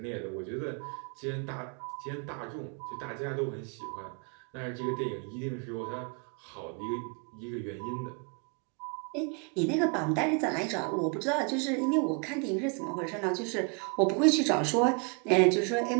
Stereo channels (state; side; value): quieter; left; 36.0 dB